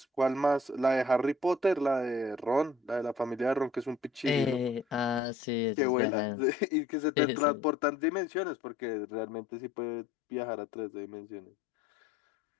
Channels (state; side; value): drops out; right; at 5.2 s